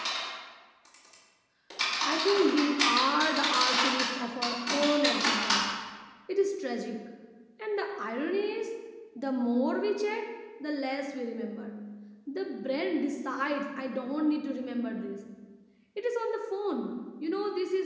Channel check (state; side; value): identical; both; correlation 1.00